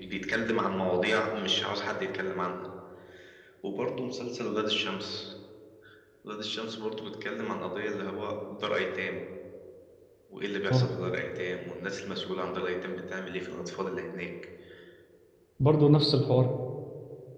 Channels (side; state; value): both; identical; correlation 1.00